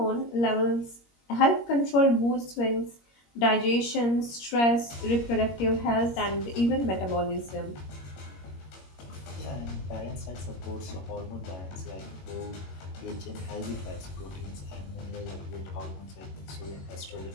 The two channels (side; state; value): right; late; 21 ms